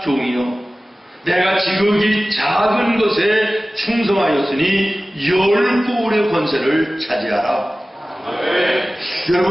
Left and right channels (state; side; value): normal; both; correlation 0.97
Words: 종이요, 내가 지극히 작은 것에 충성하였으니 10고울의 권세를 차지하라.